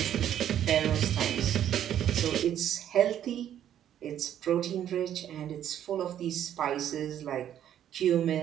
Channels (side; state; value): left; quieter; 10.6 dB